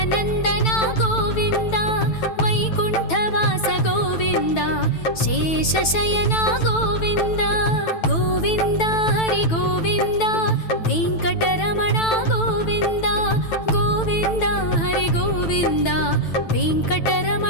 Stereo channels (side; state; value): right; late; 9.1 ms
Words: गोविन्द वैकुण्ठवास गोविन्द शेषशयन गोविन्द गोविन्द हरि गोविन्द वेङ्कटरमण गोविन्द गोविन्द हरि गोविन्द